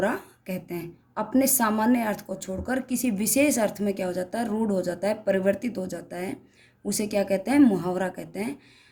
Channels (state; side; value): identical; both; correlation 1.00